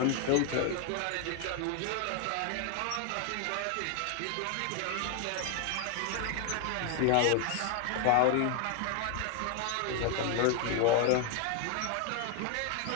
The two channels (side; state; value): both; different; correlation 0.00